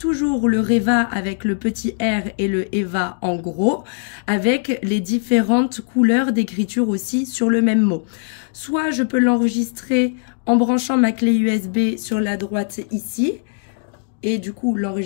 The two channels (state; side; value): silent; right; digital silence